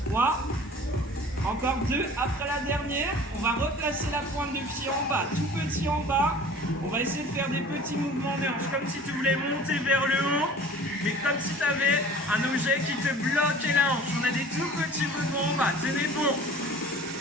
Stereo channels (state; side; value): normal; both; correlation 0.44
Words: 3. Encore 2 après la dernière. On va replacer la pointe de pied en bas. Tout petit en bas. On va essayer de faire des petits mouvements de hanche. Comme si tu voulais monter vers le haut. Mais comme si tu avais un objet qui te bloquait la hanche. On a des tout petits mouvements en bas. Tenez bon.